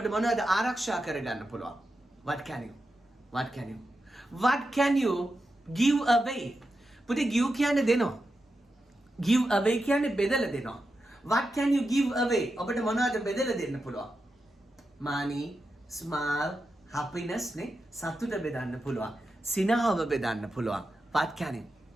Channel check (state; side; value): normal; both; correlation 0.89